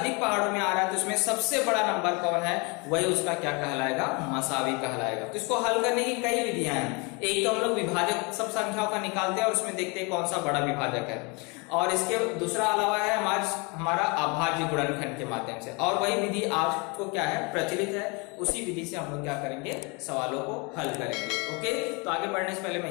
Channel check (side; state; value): right; quieter; 29.9 dB